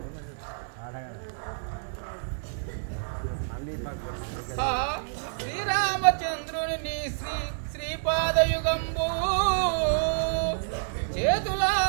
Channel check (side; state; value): left; silent; digital silence